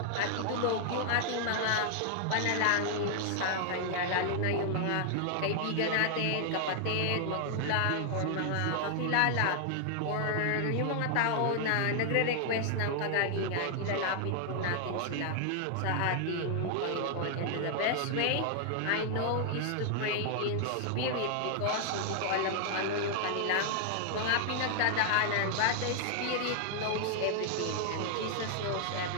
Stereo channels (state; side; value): different; both; correlation 0.00